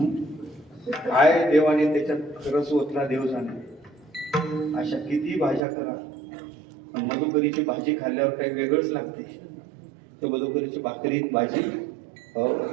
काय देवाने त्याच्यात खरंच ओतला देव जाणे. अशा किती भाज्या करा, पण मधुकरीची भाजी खाल्ल्यावर काही वेगळंच लागते. तर मधुकरीची भाकरीत भाजी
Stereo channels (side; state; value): left; drops out; at 5.6 s